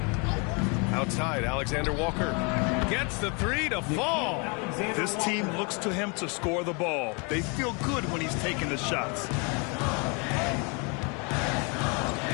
Outside, Alexander-Walker gets the 3 to fall. This team looks to him to score the ball. They feel good when he's taking the shots.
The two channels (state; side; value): quieter; right; 32.6 dB